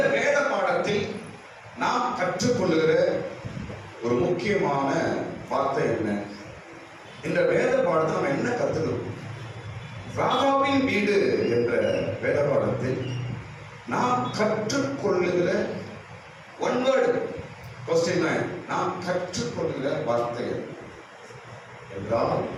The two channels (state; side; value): identical; both; correlation 1.00